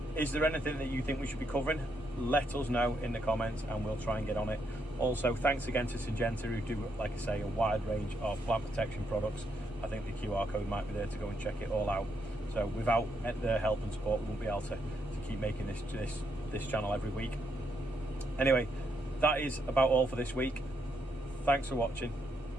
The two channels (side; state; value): both; normal; correlation 0.78